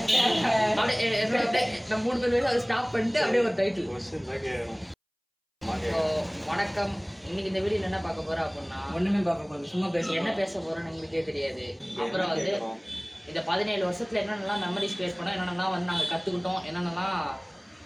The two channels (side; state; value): both; identical; correlation 1.00